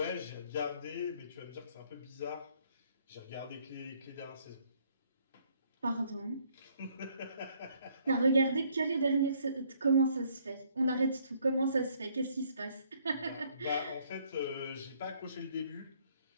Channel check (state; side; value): inverted; both; correlation -0.65